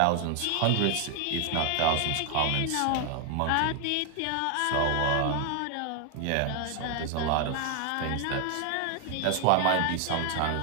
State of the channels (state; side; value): different; both; correlation 0.00